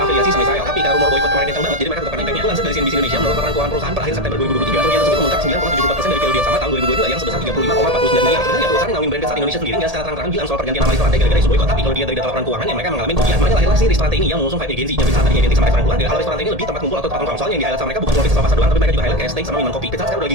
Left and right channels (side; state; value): left; late; 1.8 ms